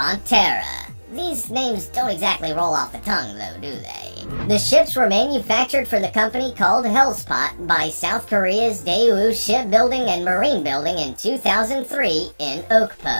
Terra. These names don't exactly roll off the tongue, though, do they? The ships were manufactured for the company called Hellespont by South Korea's Daewoo Shipbuilding and Marine Building in 2003 in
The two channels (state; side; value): inverted; both; correlation -1.00